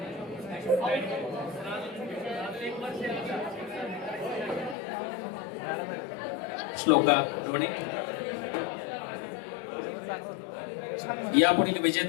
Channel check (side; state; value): right; drops out; at 4.8 s